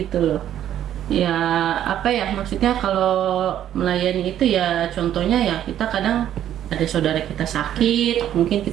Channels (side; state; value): left; quieter; 11.1 dB